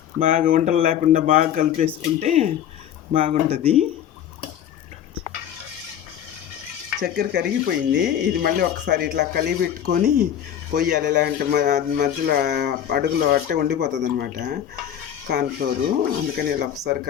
బాగా వంటలు లేకుండా బాగా కలిపేసుకుంటే బాగుంటుంది. చక్కెర కరిగిపోయింది. ఇది మళ్ళీ ఒకసారి ఇట్లా కలిపి పెట్టుకొని పొయ్యాలి. లేదంటే మధ్యలో అడుగులో అట్టే ఉండిపోతుంది అనమాట కార్న్ఫ్లోరు. అందుకని ఇలా ఒకసారి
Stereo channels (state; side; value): quieter; right; 10.0 dB